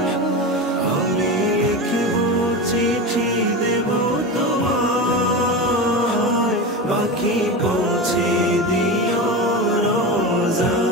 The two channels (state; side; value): normal; both; correlation 0.23